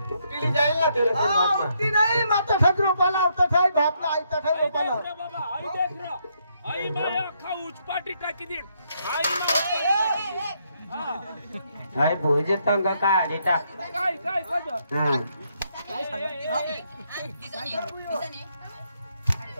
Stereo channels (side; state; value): both; inverted; correlation -0.75